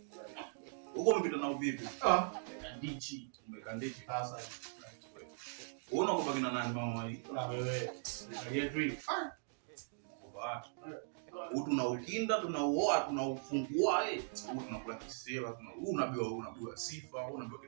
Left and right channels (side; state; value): left; silent; digital silence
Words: Uko umepita na uvipi? Kandichi. Umekandichi Sasa. Unaona kwa kina nani mama hii? Na wewe. Aliye tunaukinda, tunauoa, tunaufungua tunakula kisela, unabiwa sifa, unabiwa